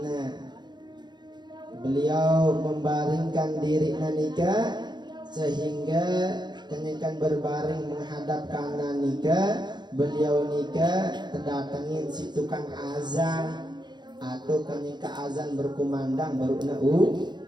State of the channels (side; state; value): left; late; 0.21 ms